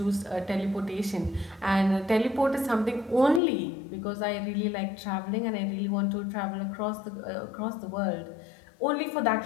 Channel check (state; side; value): drops out; right; at 3.4 s